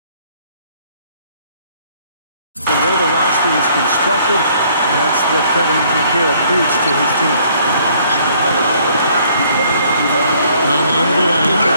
the way the roster was constructed, and that's what Kevin McHale preached to his team. Conley into the lane.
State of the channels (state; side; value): inverted; both; correlation -0.62